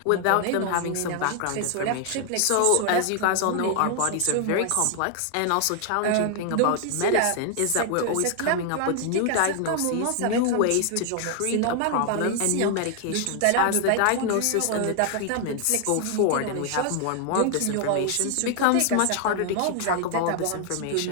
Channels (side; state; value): both; different; correlation 0.00